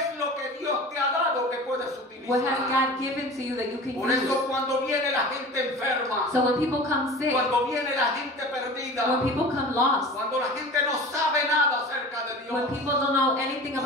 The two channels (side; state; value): both; normal; correlation 0.38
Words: lo que Dios te ha dado que puedes utilizar? What has God given to you that you can Por eso use? cuando viene la gente enferma, So when people come sick, cuando viene la gente perdida, when people come lost, cuando la gente no sabe nada acerca de Dios, when people don't know anything tú